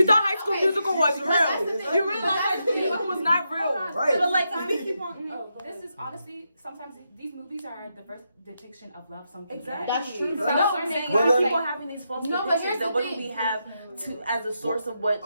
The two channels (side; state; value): both; inverted; correlation -0.84